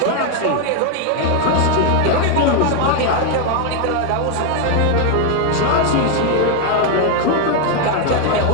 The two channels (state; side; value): different; both; correlation 0.01